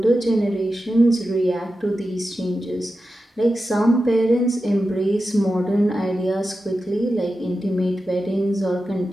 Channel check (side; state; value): both; normal; correlation 0.91